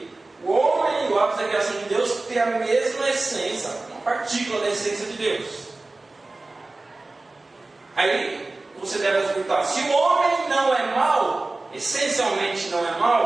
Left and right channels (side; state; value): left; quieter; 3.2 dB